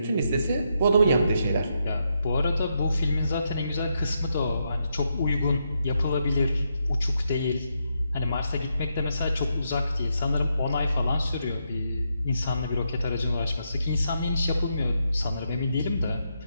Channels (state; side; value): inverted; both; correlation -0.81